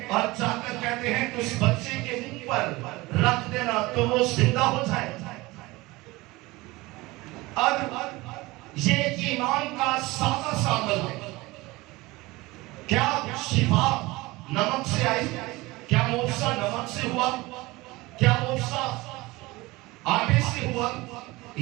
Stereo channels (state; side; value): quieter; left; 21.3 dB